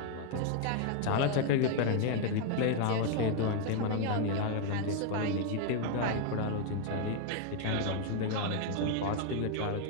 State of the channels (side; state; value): both; different; correlation 0.01